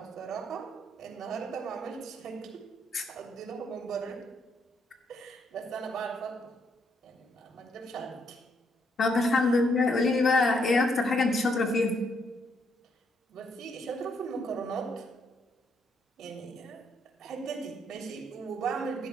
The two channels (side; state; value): both; normal; correlation 0.74